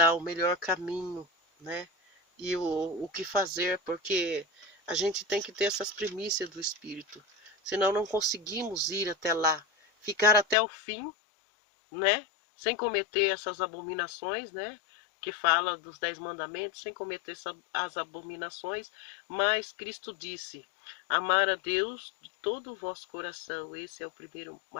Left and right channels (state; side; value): drops out; right; at 10.6 s